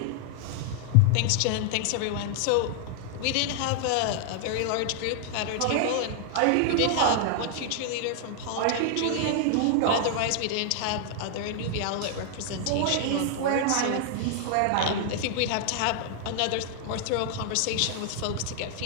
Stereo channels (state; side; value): different; both; correlation 0.00